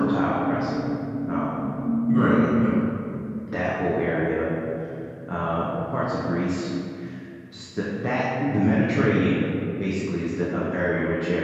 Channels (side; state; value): both; identical; correlation 1.00